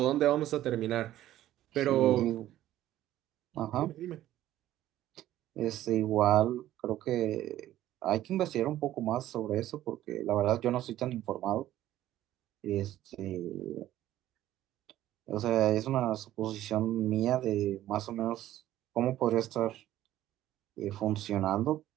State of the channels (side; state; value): left; quieter; 13.6 dB